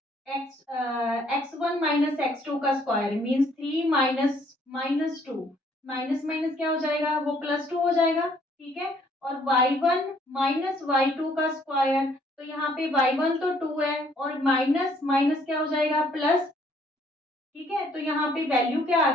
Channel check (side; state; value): both; normal; correlation 0.64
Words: x1 माइनस x2 का square means 3 minus -2, minus minus क्या हो जाएगा, वो +2 हो जाएगा। ठीक है, और y1 माइनस y2 का स्क्वायर, तो यहाँ पे y1 तो 2 है और माइनस माइनस क्या हो जाएगा, प्लस। ठीक है, तो यहाँ पे वैल्यू क्या आ